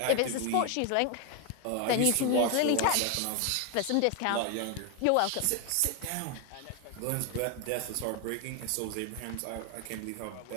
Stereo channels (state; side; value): different; both; correlation 0.01